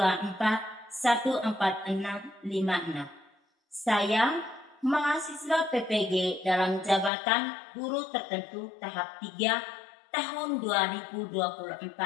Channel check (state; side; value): drops out; right; at 7.1 s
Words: Saya mahasiswa PPG dalam jabatan guru tertentu tahap 3 tahun